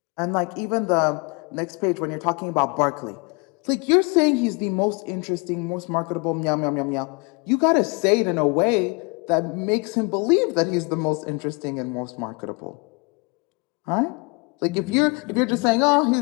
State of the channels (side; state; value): right; quieter; 31.2 dB